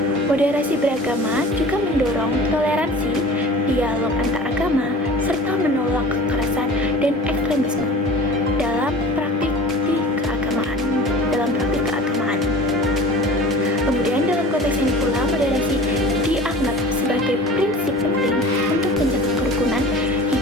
Moderasi beragama juga mendorong toleransi, dialog antar agama, serta menolak kekerasan dan ekstremisme dalam praktik keagamaan. Kemudian dalam konteks ini pula, moderasi dianggap sebagai prinsip penting untuk menjaga kerukunan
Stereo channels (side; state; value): both; normal; correlation 0.40